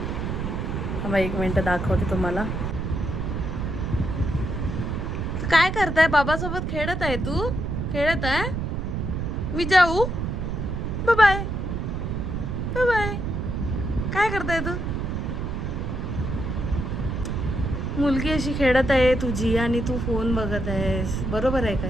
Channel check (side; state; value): right; noise; rumble, 2 dB below the sound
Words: थांबा 1 मिनटं दाखवते तुम्हाला. काय करताय? बाबासोबत खेळत आहे तू? खेळत आहे? मी जाऊ? Bye bye bye bye. काय करताय तू? मुलगी अशी खेळत आहे तुझी आणि तू फोन बघत आहेस, बरोबर आहे का